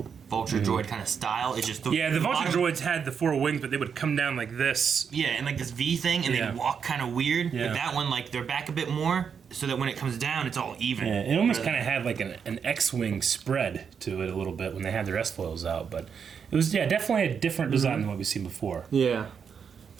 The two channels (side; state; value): left; quieter; 6.8 dB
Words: Vulture droid kind of style. It's just The Vulture droids had the four wings, but they would come down like this. Yeah, and like this V thing, and Yeah. they walk kind of weird. Yeah. But that one, like, they're back a bit more, so that when it comes down, it's all even. Yeah, it almost kind of had like an X-wing spread to it a little bit when they had their S-foils out, but it was definitely a different design than what we've seen before. Yeah.